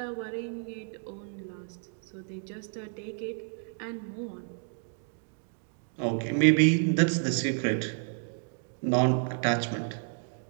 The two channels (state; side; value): silent; left; 57 dB below the other